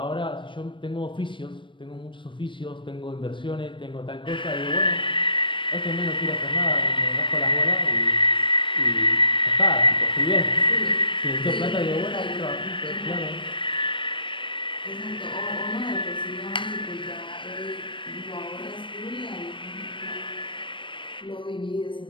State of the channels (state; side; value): late; right; 0.24 ms